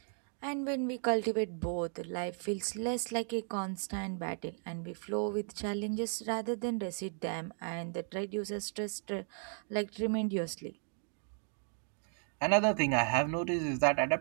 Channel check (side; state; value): left; silent; 54 dB below the other